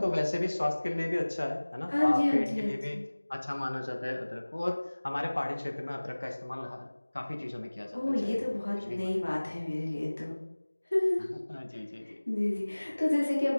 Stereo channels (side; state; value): both; inverted; correlation -1.00